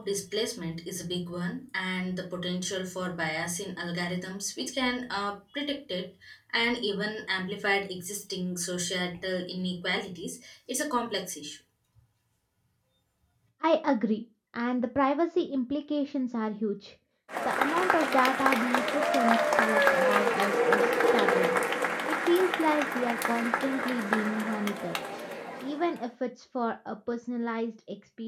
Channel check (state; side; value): identical; both; correlation 1.00